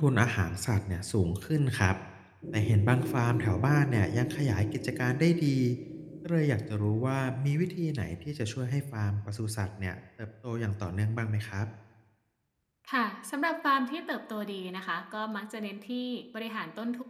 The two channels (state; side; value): identical; both; correlation 1.00